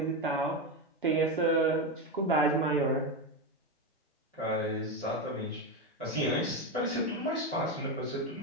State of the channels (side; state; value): both; normal; correlation 0.13